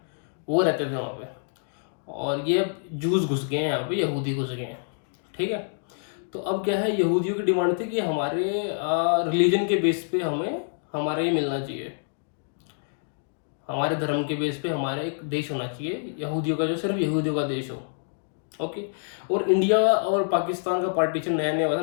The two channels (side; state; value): right; silent; digital silence